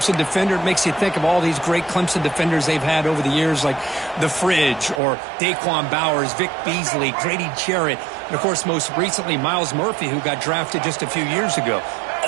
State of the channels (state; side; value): drops out; left; at 5.0 s